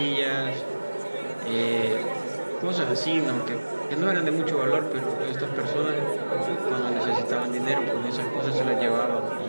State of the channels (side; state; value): both; inverted; correlation -1.00